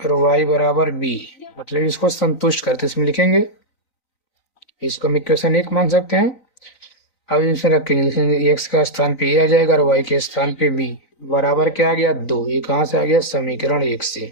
y बराबर बी, मतलब इसको संतुष्ट करते इसमें लिखेंगे, इसको हम इक्वेशन 1 मान सकते हैं। अब इसमें रखेंगे, लिखेंगे x का स्थान पे ए आ जाएगा और y के स्थान पे बी, बराबर क्या आ गया 2, ये कहाँ से आ गया, समीकरण 1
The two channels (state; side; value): late; right; 3.9 ms